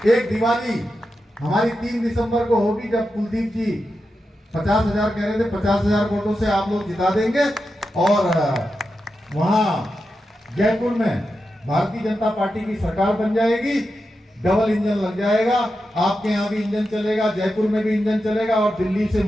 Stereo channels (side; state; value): both; normal; correlation 0.89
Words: एक दिवाली हमारी 3 दिसंबर को होगी, जब कुलदीप जी 50,000 कह रहे थे, 50,000 वोटों से आप लोग जिता देंगे। और वहां जयपुर में भारतीय जनता पार्टी की सरकार बन जाएगी, डबल इंजन लग जाएगा। आपके यहाँ भी इंजन चलेगा, जयपुर में भी इंजन चलेगा, और दिल्ली से